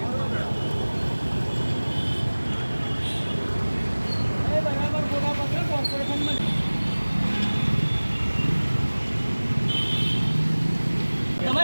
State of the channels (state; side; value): inverted; both; correlation -1.00